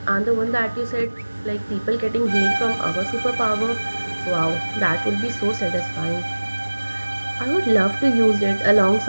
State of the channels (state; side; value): inverted; both; correlation -1.00